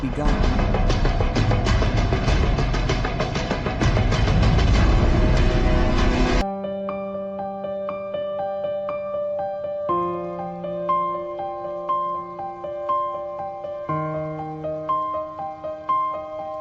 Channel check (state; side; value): identical; both; correlation 1.00